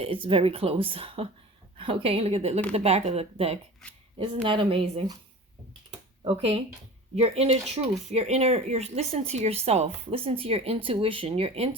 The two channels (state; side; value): normal; both; correlation 0.37